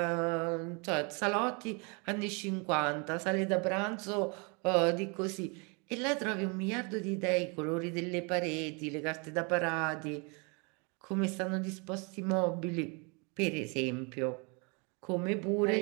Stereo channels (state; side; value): quieter; left; 32.6 dB